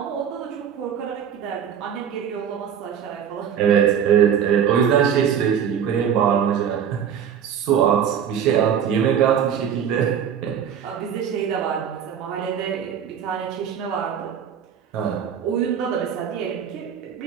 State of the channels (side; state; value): left; quieter; 8.4 dB